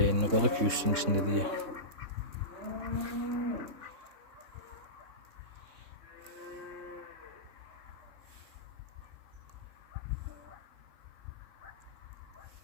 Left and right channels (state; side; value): late; left; 3.7 ms